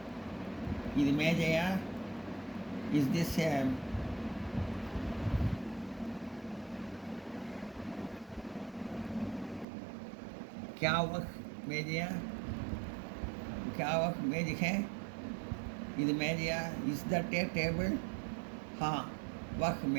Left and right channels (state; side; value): drops out; left; at 9.7 s